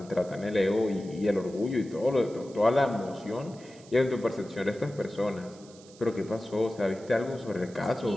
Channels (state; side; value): noise; right; hiss, 23 dB below the sound